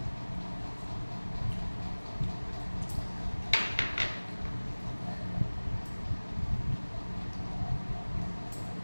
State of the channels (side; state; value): both; inverted; correlation -1.00